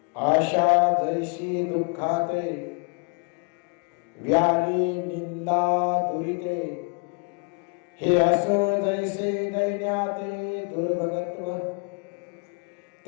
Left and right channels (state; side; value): quieter; right; 34.2 dB